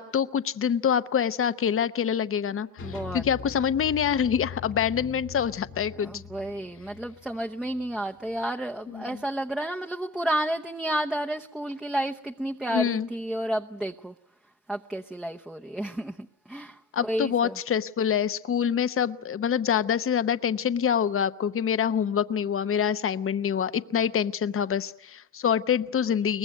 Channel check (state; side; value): quieter; right; 5.8 dB